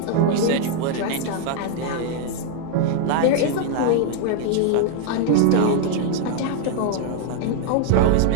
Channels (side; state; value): both; different; correlation 0.00